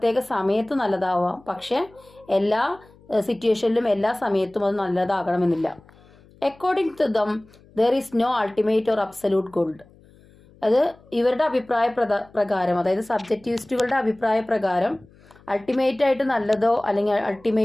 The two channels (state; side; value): noise; left; hum, 27 dB below the sound